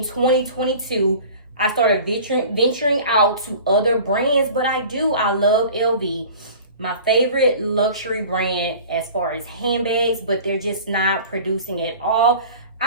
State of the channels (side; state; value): both; inverted; correlation -0.42